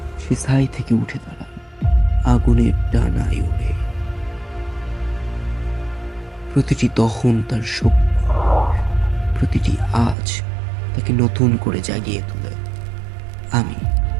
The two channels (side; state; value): left; drops out; at 10.2 s